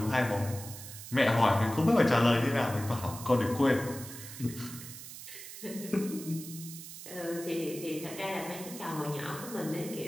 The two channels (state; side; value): noise; right; hiss, 12 dB below the sound